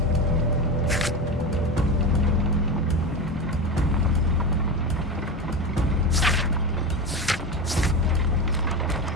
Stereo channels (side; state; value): both; normal; correlation 0.22